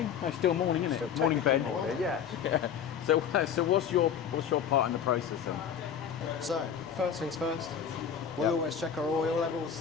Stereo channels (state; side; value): quieter; right; 8.0 dB